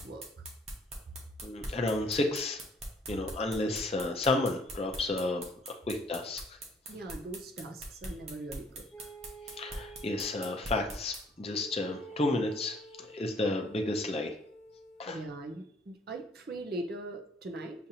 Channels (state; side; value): normal; both; correlation 0.61